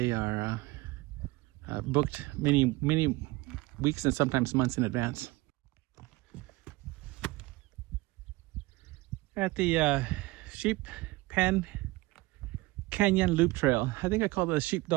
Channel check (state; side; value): quieter; left; 21.3 dB